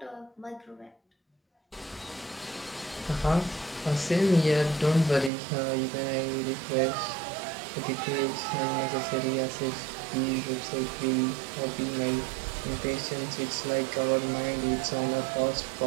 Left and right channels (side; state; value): left; drops out; at 5.3 s